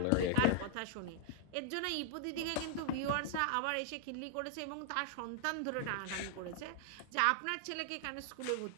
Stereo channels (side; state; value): both; different; correlation -0.01